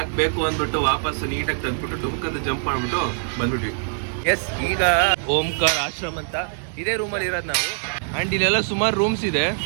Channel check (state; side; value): silent; left; digital silence